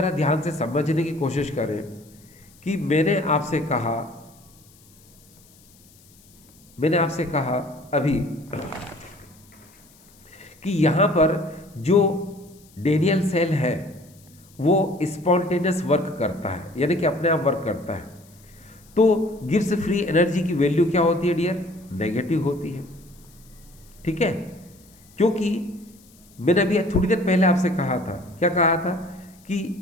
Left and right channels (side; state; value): left; noise; hiss, 28 dB below the sound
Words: ध्यान से समझने की कोशिश करें कि मैंने आपसे कहा अभी कि यहाँ पर जो डेनियल सेल है वो स्पॉन्टेनियस वर्क करता है, यानी कि अपने आप वर्क करता है। तो गिब्स फ्री एनर्जी की वैल्यू क्या होती है डियर? नेगेटिव होती है। ठीक है, क्योंकि मैंने अभी थोड़ी देर पहले आपसे कहा था, क्या कहा था?